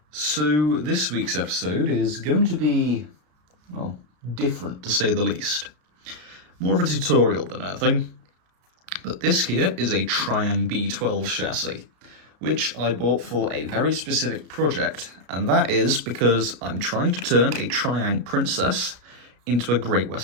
So this week's episode is going to be, well, different to say the least. More of a tutorial than anything. But this here is a Triang B12 chassis, which I bought for a very specific project, and that is because I'm trying to turn a Triang princess into a Great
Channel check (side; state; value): left; late; 33 ms